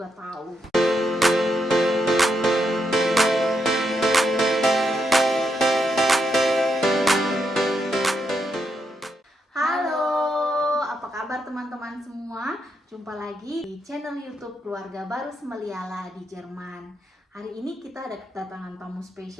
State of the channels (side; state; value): both; normal; correlation 0.81